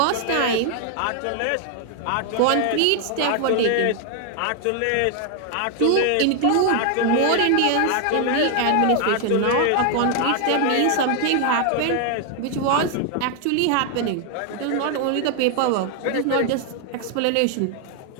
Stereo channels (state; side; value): different; both; correlation 0.00